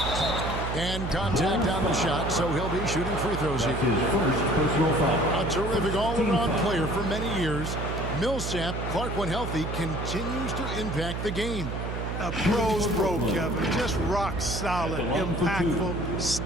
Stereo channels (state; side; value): noise; right; hum, 4 dB below the sound